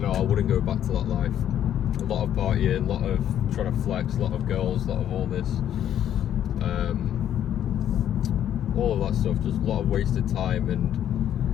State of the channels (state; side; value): quieter; right; 10.5 dB